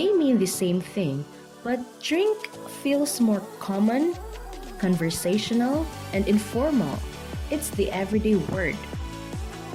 mean the same thing, but drink feels more common, conversational, and informal. It's the everyday word.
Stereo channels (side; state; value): both; identical; correlation 1.00